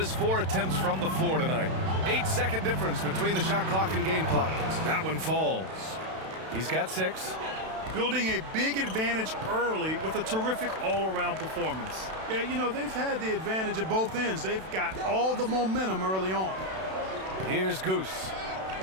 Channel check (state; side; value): late; left; 32 ms